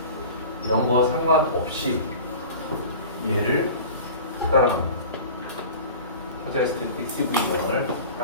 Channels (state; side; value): inverted; both; correlation -0.38